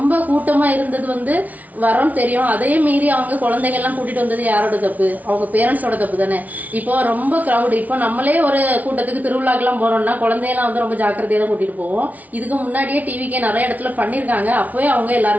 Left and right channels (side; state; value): left; late; 0.074 ms